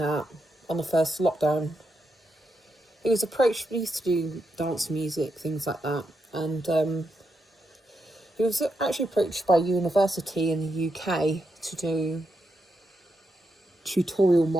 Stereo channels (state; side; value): normal; both; correlation 0.84